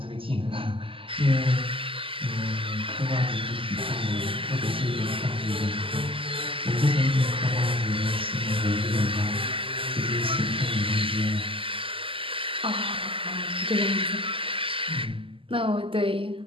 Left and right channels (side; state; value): left; late; 0.26 ms